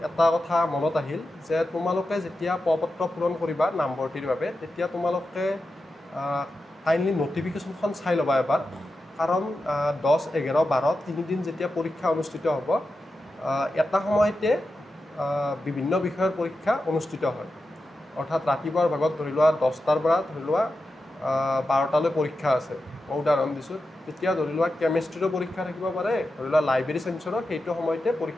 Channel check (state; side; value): normal; both; correlation 0.90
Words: এটা কথা মনত আহিল যে তোমালোকে যেতিয়া প্ৰপত্ৰ পূৰণ কৰিবা নামভৰ্তিৰ বাবে তেতিয়া তোমালোকে কাইণ্ডলি নটিফিকেশ্যনখন চাই ল'বা এবাৰ কাৰণ 10-11-12 তিনিদিন যেতিয়া পৰীক্ষা অনুষ্ঠিত হ'ব এটা সময়তে বিভিন্ন বিষয়ৰ পৰীক্ষা অনুষ্ঠিত হয় অৰ্থাৎ ৰাতিপুৱাৰ ভাগত ধৰি লোৱা 10টাৰ পৰা ধৰি লোৱা 12টালৈ পৰীক্ষা আছে মই উদাহৰণ দিছোঁ তেতিয়া ধৰি লোৱা কেমেষ্ট্ৰিৰো পৰীক্ষা থাকিব পাৰে ধৰি লোৱা লাইব্ৰেৰী চায়েন্সৰো সেইটো সময়তে